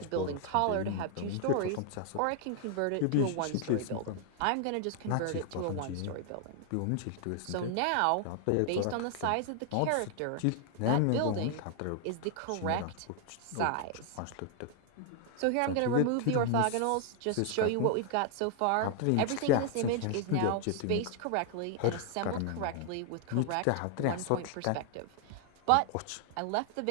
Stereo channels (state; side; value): different; both; correlation 0.00